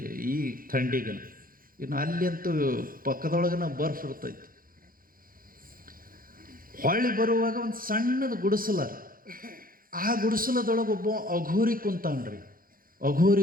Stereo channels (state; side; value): late; left; 0.41 ms